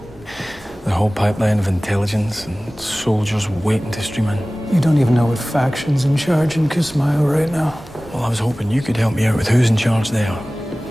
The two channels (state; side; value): normal; both; correlation 0.98